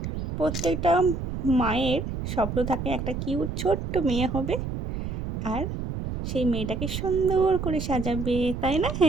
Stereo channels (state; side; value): noise; right; rumble, 5 dB below the sound